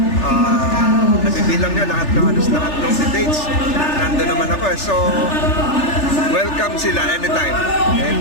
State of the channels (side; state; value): right; late; 3.4 ms